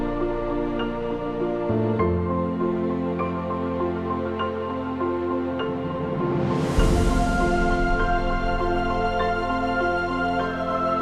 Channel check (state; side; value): identical; both; correlation 1.00